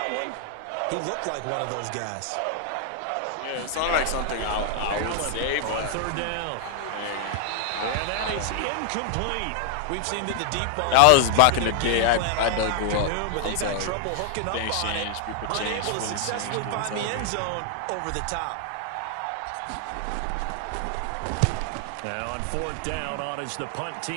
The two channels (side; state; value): both; different; correlation 0.00